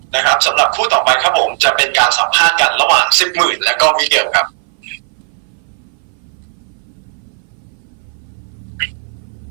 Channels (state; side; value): silent; left; 61 dB below the other